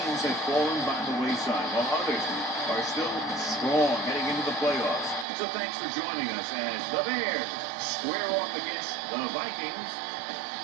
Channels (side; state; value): left; drops out; at 5.2 s